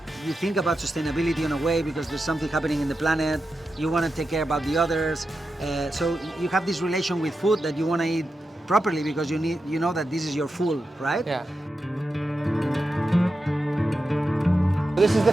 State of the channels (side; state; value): both; normal; correlation 0.89